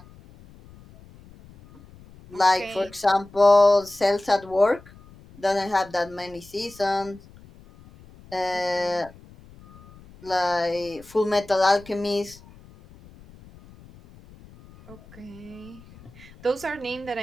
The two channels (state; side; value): noise; left; rumble, 23 dB below the sound